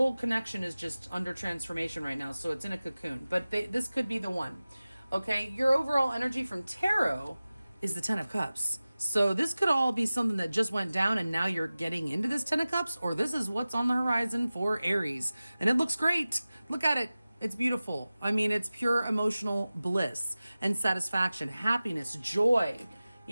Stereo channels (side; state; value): both; inverted; correlation -0.97